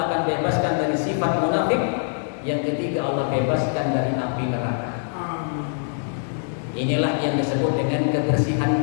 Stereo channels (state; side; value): silent; right; 62 dB below the other